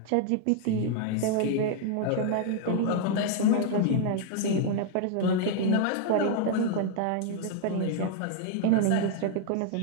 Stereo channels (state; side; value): different; both; correlation 0.00